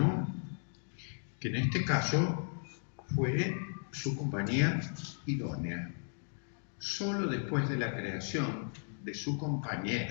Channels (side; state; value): right; silent; 54 dB below the other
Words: que en este caso fue su compañía idónea. Solo después de la creación de su